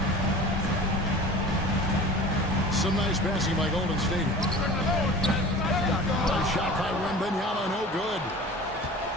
Some nice passing by Golden State. A shot by Wembanyama, no good.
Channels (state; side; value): normal; both; correlation 0.39